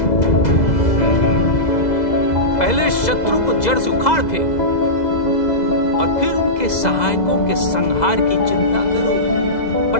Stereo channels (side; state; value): right; late; 2.0 ms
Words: पहले शत्रु को जड़ से उखाड़ फेंको और फिर उनके सहायकों के संहार की चिंता करो।